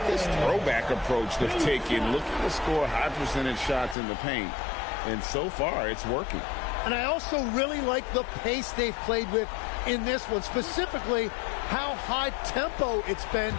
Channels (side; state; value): right; drops out; at 4.0 s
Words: this throwback approach they've taken, looking to score high percentage shots in the paint. And so far, it's working. And I also really like the pace they've played with in this one, specifically how high tempo it's been,